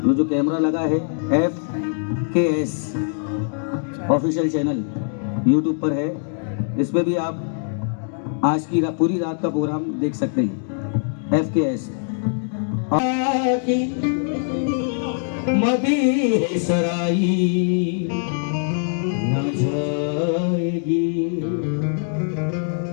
जो कैमरा लगा है FKS ऑफिशियल चैनल YouTube पर है, इसमें भी आप आज की पूरी रात का प्रोग्राम देख सकते हैं। FKS मदी सराई न जाएगी,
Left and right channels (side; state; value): right; silent; digital silence